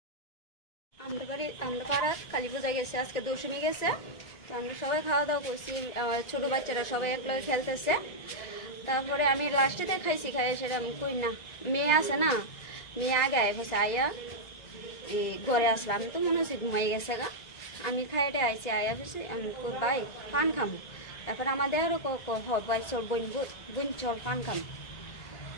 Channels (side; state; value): right; late; 1.9 ms